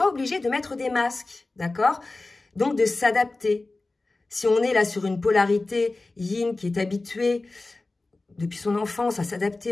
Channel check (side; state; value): right; quieter; 3.2 dB